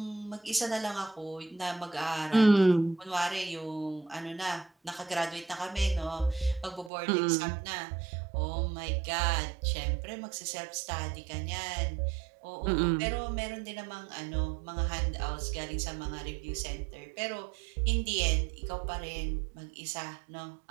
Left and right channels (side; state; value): left; drops out; at 6.9 s